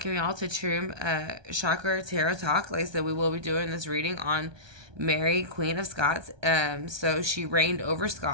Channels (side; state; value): left; late; 1.2 ms